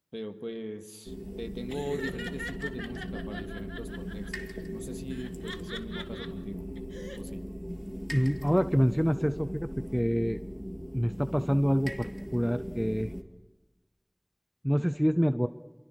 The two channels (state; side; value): identical; both; correlation 1.00